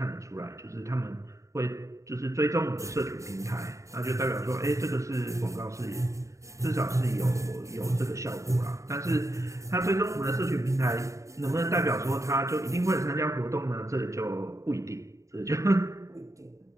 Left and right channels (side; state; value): left; late; 0.15 ms